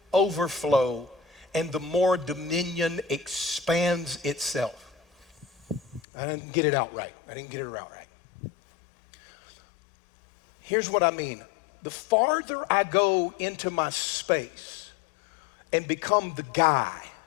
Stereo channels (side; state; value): right; drops out; at 6.0 s